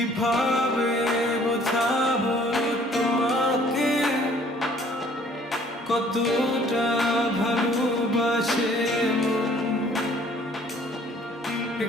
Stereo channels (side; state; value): both; normal; correlation 0.57